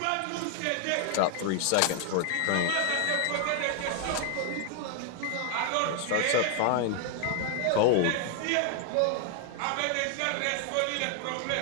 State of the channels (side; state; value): both; different; correlation 0.00